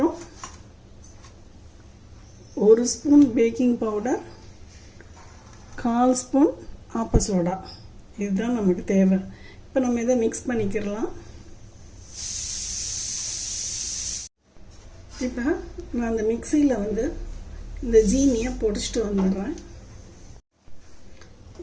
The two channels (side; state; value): both; identical; correlation 1.00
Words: 1 ஸ்பூன் பேக்கிங் பவுடர், 1/4 ஸ்பூன் ஆப்ப சோடா. இதுதான் நமக்கு தேவை. இப்போ நம்ம இதை மிக்ஸ் பண்ணிக்கிறலாம். இப்போ நான் அந்த மிக்சியில் இந்த ஜீனியை பொடிச்சிட்டு வந்துடுறேன்.